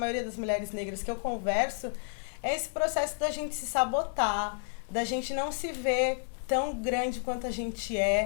das mulheres negras que eu converso, é esse processo da gente se sabotar, da gente não se ver tão grande quanto a gente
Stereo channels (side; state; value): right; silent; digital silence